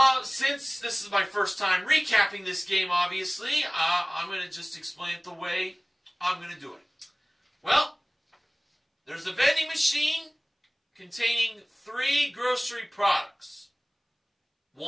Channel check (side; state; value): both; identical; correlation 1.00